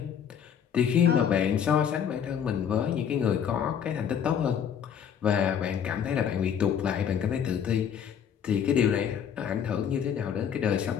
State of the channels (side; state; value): right; quieter; 8.2 dB